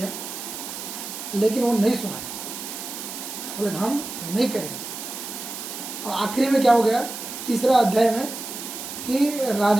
लेकिन वो नहीं सुना, बोले हम नहीं करेंगे। और आखिरी में क्या हो गया? तीसरा अध्याय में कि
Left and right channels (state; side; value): noise; right; hiss, 8 dB below the sound